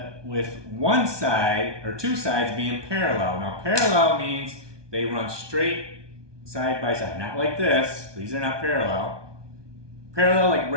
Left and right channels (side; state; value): left; late; 1.2 ms